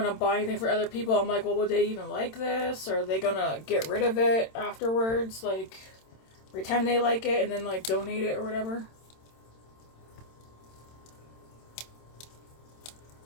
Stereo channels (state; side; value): late; right; 27 ms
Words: I'm buying things for other people, I'm like, well, would they even like this? Or are they gonna get rid of it afterwards? Like, pretend they like it and then, like, donate it or whatever.